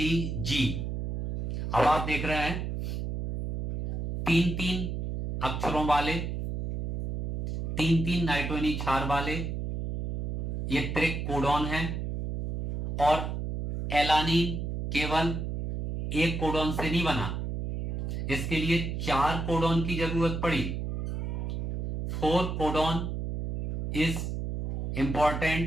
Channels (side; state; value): right; noise; hum, 3 dB below the sound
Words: अब आप देख रहे हैं 3 अक्षरों वाले, 3 नाइट्रोजनी क्षार वाले ये त्रिक कोडॉन है, और एलानीन केवल एक कोडॉन से नहीं बना, इसके लिए 4 कोडॉन की जरूरत पड़ी। 4 codon is